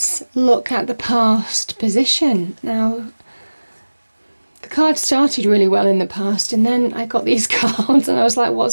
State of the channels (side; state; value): both; inverted; correlation -1.00